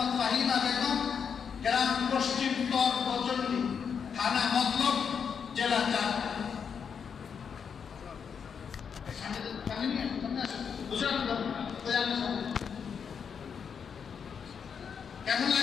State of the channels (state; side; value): quieter; right; 6.8 dB